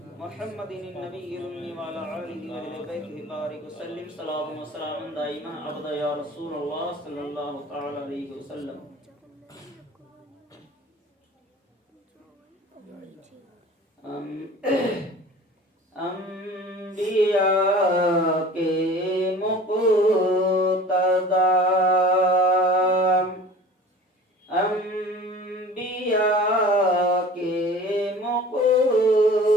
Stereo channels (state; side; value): normal; both; correlation 0.42